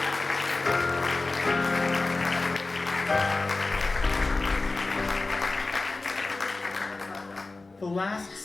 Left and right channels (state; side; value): quieter; right; 3.4 dB